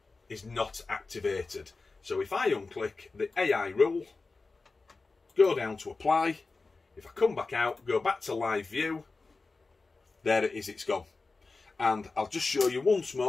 is not activated. So if I unclick the AI rule, go down to apply, if I come back out, go back to live view, there it is, it's gone. And I'll just show you once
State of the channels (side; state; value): right; quieter; 3.8 dB